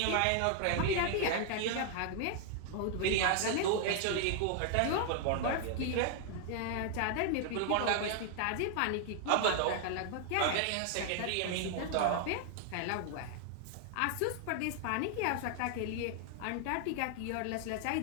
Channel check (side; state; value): both; different; correlation 0.00